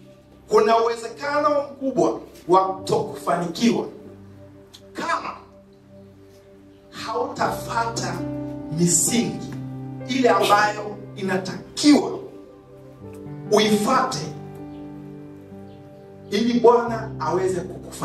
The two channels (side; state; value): both; identical; correlation 1.00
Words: kuna uwezekano mkubwa wa kutokufanikiwa kama hautafuata misingi ile ambayo inatakiwa uifuate ili Bwana aweze